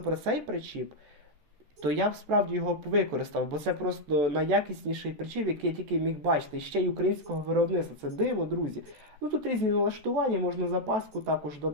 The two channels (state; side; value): late; left; 14 ms